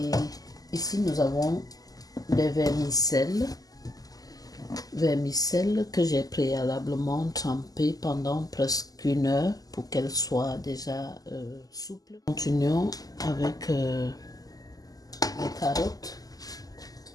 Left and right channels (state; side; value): late; right; 0.17 ms